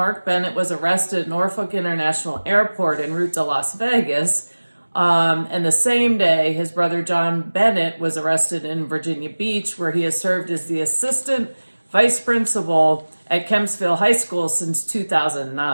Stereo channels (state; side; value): inverted; both; correlation -1.00